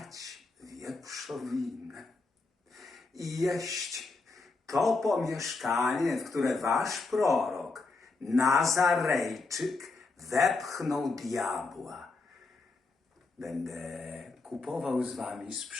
wieprzowinę. I jeść to pomieszkanie, w które wasz prorok, Nazarejczyk, wepchnął diabła. Będę kupował z wami,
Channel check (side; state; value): right; quieter; 3.8 dB